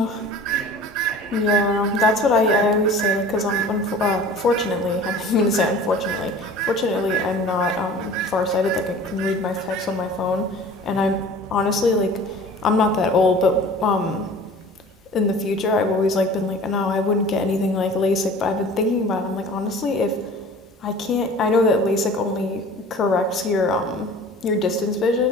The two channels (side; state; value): both; normal; correlation 0.43